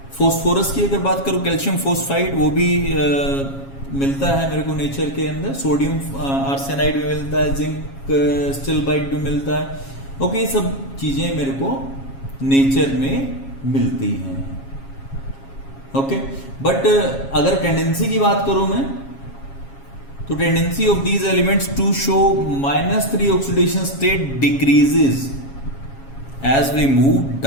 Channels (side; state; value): right; late; 7.3 ms